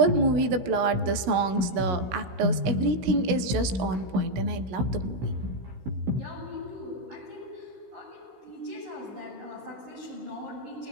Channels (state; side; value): late; left; 16 ms